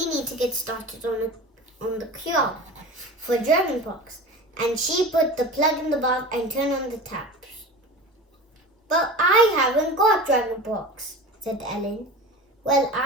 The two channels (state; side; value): normal; both; correlation 0.33